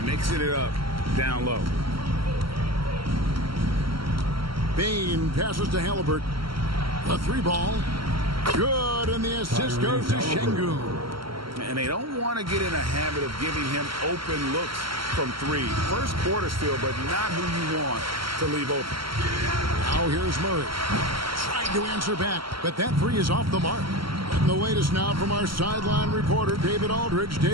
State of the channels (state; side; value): late; left; 0.74 ms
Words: mixing it up down low. Bane passes to Halliburton. The 3 ball. Good, and the assist goes to Sengun. And they don't want to get in a habit of giving him open looks from 3. First quarter still, but not who you want to leave open. Now here's Murray. Trying to answer back, but that 3 is off the mark. And the latest now from our sideline reporter, David Aldridge.